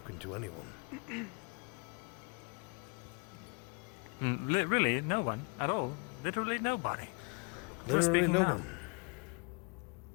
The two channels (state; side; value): quieter; right; 32.9 dB